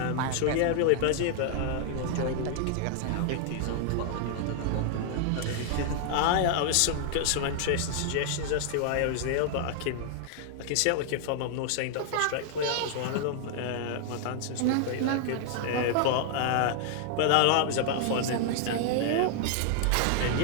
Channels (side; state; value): both; different; correlation 0.00